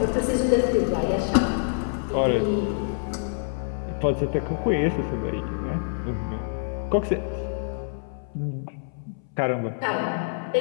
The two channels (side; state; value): right; silent; 61 dB below the other